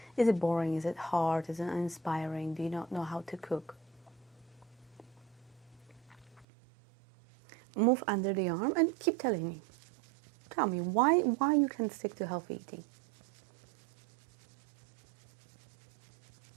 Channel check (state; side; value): drops out; left; at 6.5 s